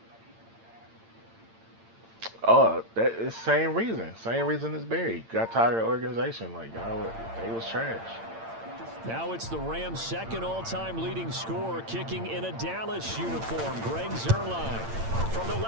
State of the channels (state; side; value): late; left; 8.8 ms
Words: Oh, that is same reason. Same reason as Barry. Got tired of the organization. Like, they was trash. Now it's the Rams' second all-time leading scorer kicking in a Dallas uniform, Greg Zuerlein. From the